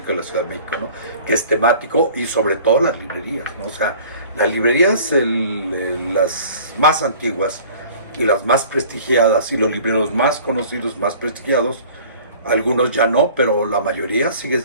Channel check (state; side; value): inverted; both; correlation -0.48